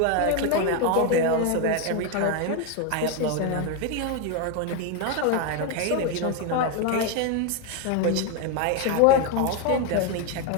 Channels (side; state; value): both; different; correlation 0.02